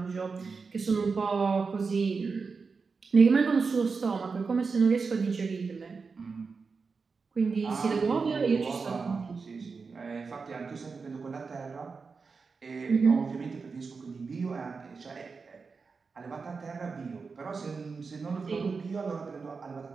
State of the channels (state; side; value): quieter; left; 4.8 dB